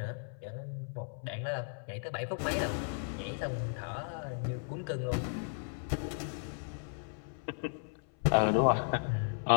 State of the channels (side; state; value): right; silent; 54 dB below the other